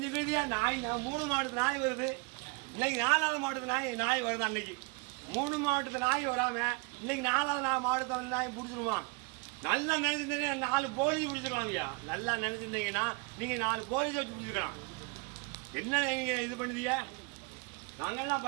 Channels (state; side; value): quieter; left; 29.8 dB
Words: நாய் 3 மாவட்டத்து நாய் வருது. இன்னைக்கு 4வது மாவட்டத்து நாய் வருது. அன்னைக்கு 3 மாவட்டத்து நாய் வராம இன்னைக்கு 4வது மாவட்டத்தில் நாய் பிடிச்சிருவான். நல்லா நினைச்சிருந்தீங்கன்னா 4 போலீஸ் பிடிச்சிருக்கலாம் இல்லையா? நல்லா நினைச்சிருந்தீங்கன்னா நீங்க 4 போலீஸ் வச்சு பிடிச்சிருக்கலாம். என்ன நீங்க இது பண்ணுதீங்க? நாங்கெல்லாம்